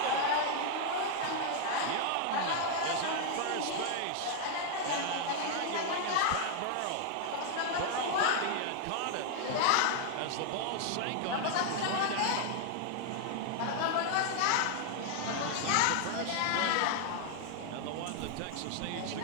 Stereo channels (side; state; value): both; different; correlation 0.00